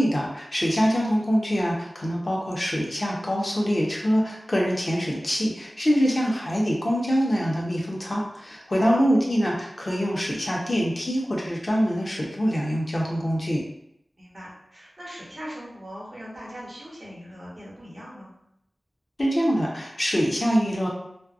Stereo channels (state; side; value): normal; both; correlation 0.96